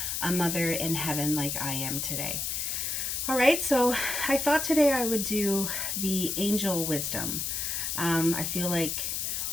a mother in heaven like I am today. All right, so I thought today I would do the angel wisdom. I feel like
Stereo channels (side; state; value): left; noise; hiss, 1 dB below the sound